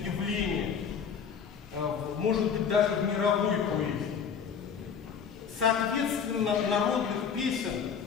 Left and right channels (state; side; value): quieter; right; 6.9 dB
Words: явление, может быть, даже в мировой поэзии. Соответственно, народных песен